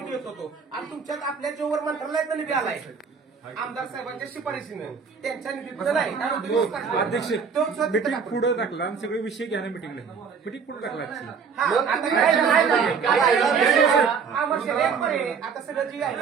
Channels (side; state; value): left; quieter; 6.0 dB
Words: येत होतो. आणि तुमच्यात आपल्या जोवर मंत्रालयातला निधी आलाय आमदार साहेबांच्या शिफारशीनं, त्यांच्या निधीतलं नाही. अध्यक्ष मीटिंग पुढे टाकला आणि सगळे विषय घ्या ना मीटिंगला. मीटिंग पुढे टाकला आता सगळं जी आहे